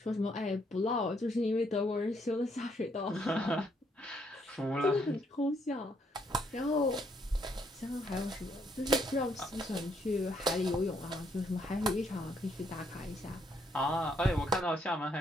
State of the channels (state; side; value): normal; both; correlation 0.72